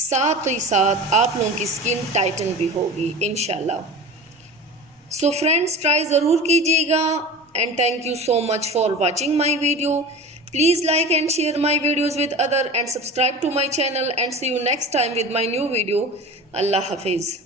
ही साथ आप लोगों की स्किन टाइटन भी होगी इंशाल्लाह। सो फ्रेंड्स, ट्राई ज़रूर कीजिएगा and thank you so much for watching my video. Please like and share my videos with other and subscribe to my channel and see you next time with my new video. Allah Hafiz.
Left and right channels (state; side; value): normal; both; correlation 0.34